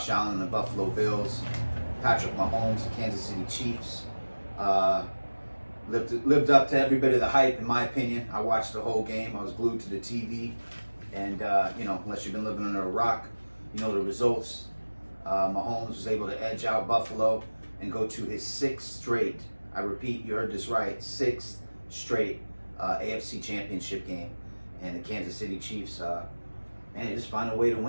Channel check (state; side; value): inverted; both; correlation -1.00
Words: Allen and the Buffalo Bills. Patrick Mahomes, the Kansas City Chiefs. Lived up to every bit of the hype, in my opinion. I watched the whole game. I was glued to the TV. And, unless you've been living under a rock, you know the results. Mahomes was able to edge out Buffalo and go to his sixth straight, I repeat, you heard this right, sixth straight AFC championship game. And the Kansas City Chiefs, they just find a way to